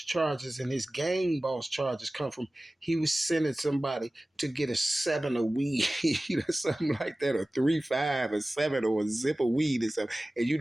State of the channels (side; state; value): both; normal; correlation 0.97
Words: and his gang boss charges come from he was sending somebody to get a 7 of weed or something like that, or 3-5 or 7 or a zip of weed or something. And you